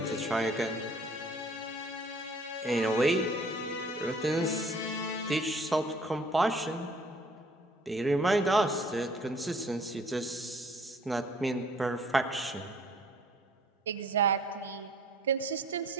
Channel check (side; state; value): both; normal; correlation 0.56